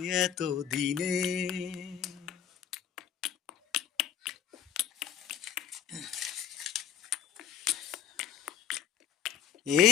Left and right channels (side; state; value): right; quieter; 9.5 dB